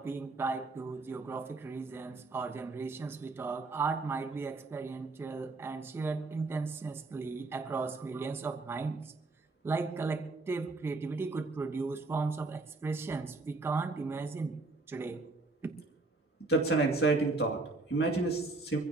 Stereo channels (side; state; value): left; quieter; 3.4 dB